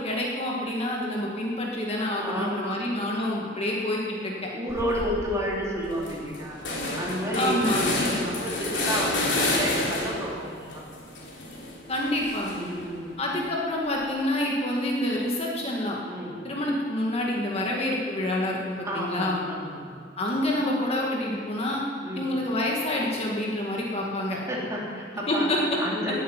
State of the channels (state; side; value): normal; both; correlation 0.40